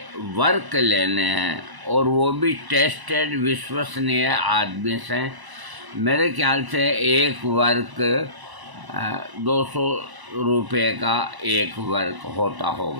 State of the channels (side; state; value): left; late; 1.0 ms